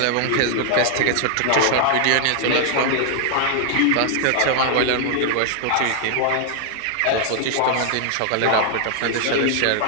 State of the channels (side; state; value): both; different; correlation 0.00